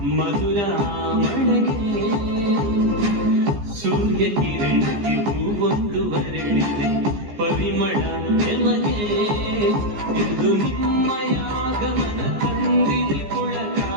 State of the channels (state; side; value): late; left; 14 ms